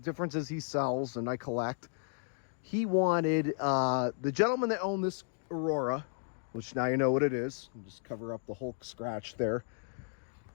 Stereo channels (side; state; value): right; silent; digital silence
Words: is he sells and I collect. He wanted, the gentleman that owned this Aurora, which now you know what it is, just cover up the Hulk scratch there,